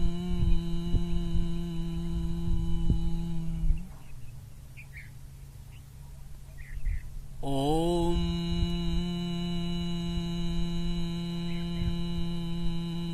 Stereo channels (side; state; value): both; identical; correlation 1.00